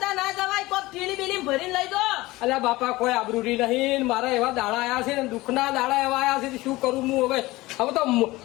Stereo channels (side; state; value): right; quieter; 19.6 dB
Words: ના જવાય. કોઈ થેલી બેલી ભરીને લઈ જો. અલ્યા બાપા કોઈ આબરૂ નહીં. મારા એવા દાડા આયા છે ને દુઃખના દાડા એવા આયા છે તો શું કરું હું હવે? હવે તો